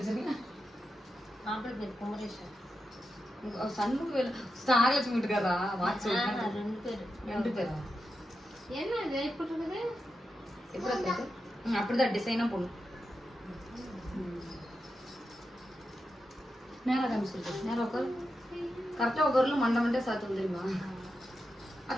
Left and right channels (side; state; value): both; normal; correlation 0.88